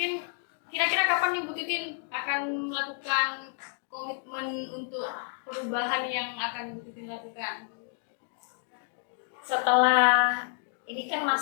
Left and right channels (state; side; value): silent; right; 58 dB below the other